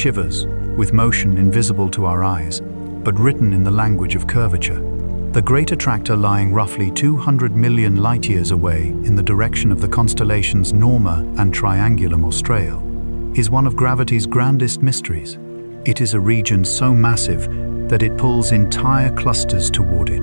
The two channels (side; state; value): both; inverted; correlation -1.00